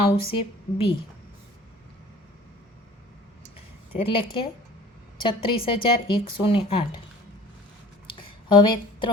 આવશે બી, એટલે કે 36108। હવે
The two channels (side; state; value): both; normal; correlation 0.47